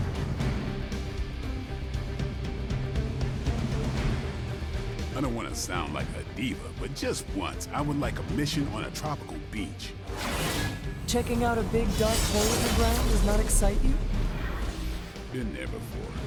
I don't want to sound like a diva, but just once, I would like a mission on a tropical beach. Checking out a big dark hole in the ground does not excite you? Been there before.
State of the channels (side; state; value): both; identical; correlation 1.00